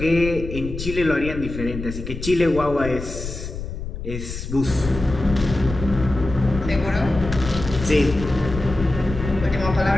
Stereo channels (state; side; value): noise; left; rumble, 8 dB below the sound